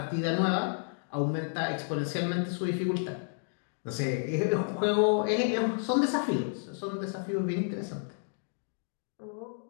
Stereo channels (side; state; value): right; silent; digital silence